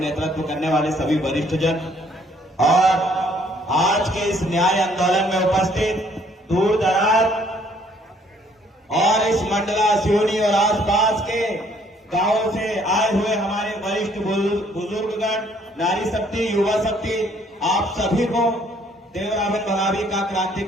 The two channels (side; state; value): both; normal; correlation 0.63